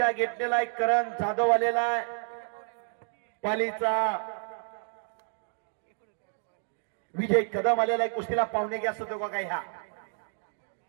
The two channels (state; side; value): silent; left; 58 dB below the other